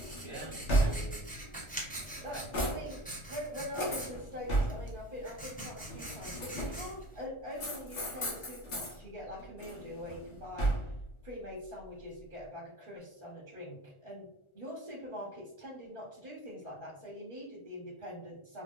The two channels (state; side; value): late; right; 1.4 ms